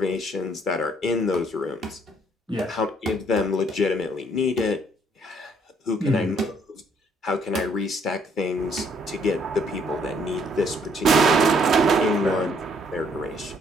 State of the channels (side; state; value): both; normal; correlation 0.66